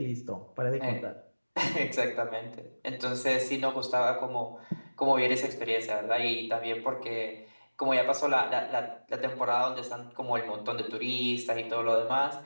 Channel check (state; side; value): inverted; both; correlation -1.00